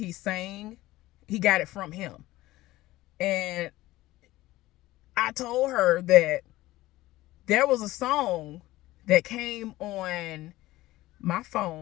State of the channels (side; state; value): right; quieter; 17.3 dB